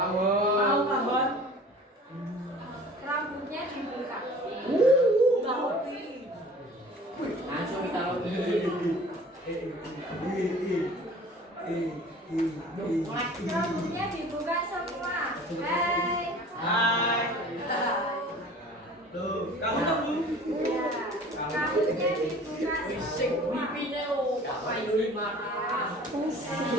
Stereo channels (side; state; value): both; normal; correlation 0.45